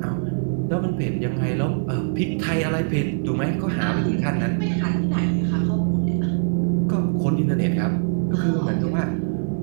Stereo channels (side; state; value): left; silent; digital silence